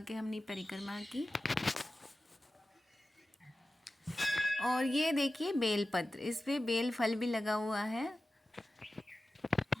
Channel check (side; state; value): both; normal; correlation 0.95